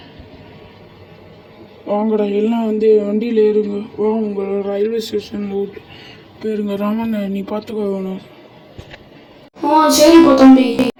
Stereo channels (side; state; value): both; identical; correlation 1.00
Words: வாங்கடா எல்லாம் வந்து வண்டியில் ஏறுங்க. வா உங்கள் ரயில்வே ஸ்டேஷனில் விட்டு போயிருங்க. ராமன் நீ பார்த்துக்கோ வேணும். சரிப்பா தம்பி.